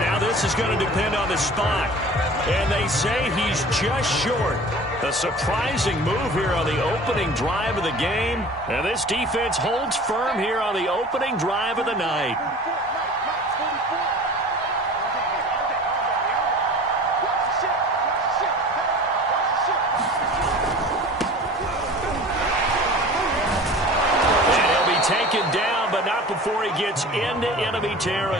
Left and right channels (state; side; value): normal; both; correlation 0.41